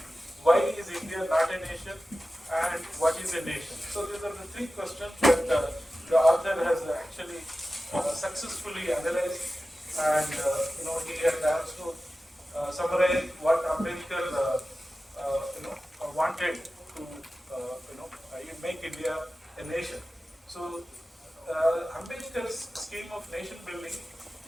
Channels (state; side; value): normal; both; correlation 0.94